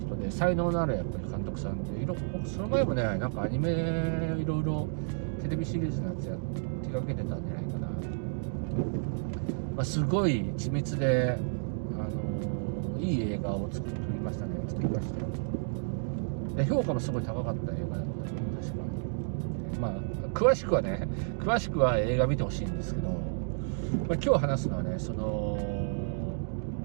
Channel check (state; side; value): silent; left; digital silence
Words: で才能のあるやっぱり監督さんでその前もねなんかアニメいろいろテレビシリーズのやつ手掛けてたんじゃないかな。すごい緻密でいい映画を作りましたよ。で評価もすごい高かった映画だった確か。詳しくは映画見てほしいんですけど、今日話すのはね